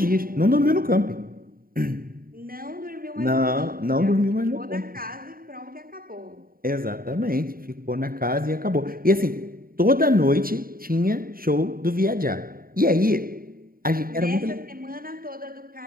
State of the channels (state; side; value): late; left; 0.42 ms